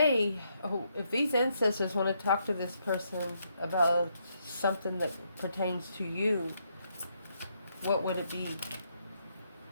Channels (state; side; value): inverted; both; correlation -0.76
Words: ancestors want to talk to this person about something that pertains to you, what would it be?